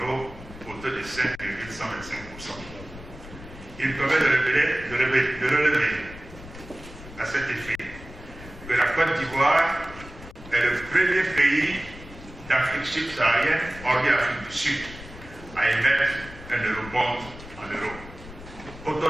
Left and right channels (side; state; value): left; noise; rumble, 16 dB below the sound